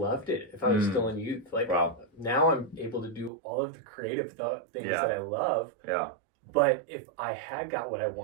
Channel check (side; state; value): left; drops out; at 3.3 s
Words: it if I was still in youth. Like now I'm able to do all of the creative things that I love. But if I had got what I